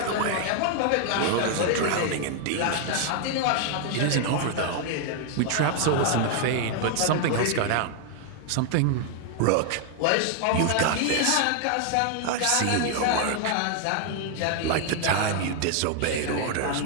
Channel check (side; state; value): both; different; correlation 0.00